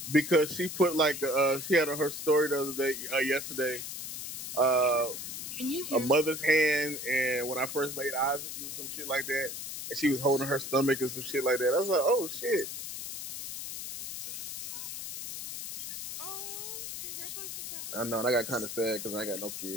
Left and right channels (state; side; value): noise; left; hiss, 7 dB below the sound